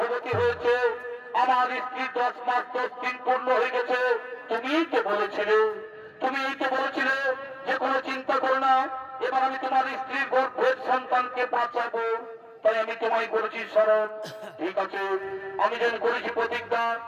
হয়েছে, আমার স্ত্রী 10 মাস 10 দিন পূর্ণ হয়ে গেছে। তুমিই তো বলেছিলে, তুমিই তো বলেছিলে যে কোনো চিন্তা করো না, এবার আমি তোমার স্ত্রীর গর্ভের সন্তানকে বাঁচাবো, তাই আমি তোমায় করেছি স্মরণ। ঠিক আছে, আমি যেন করেছি প্রতিজ্ঞা,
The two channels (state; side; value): identical; both; correlation 1.00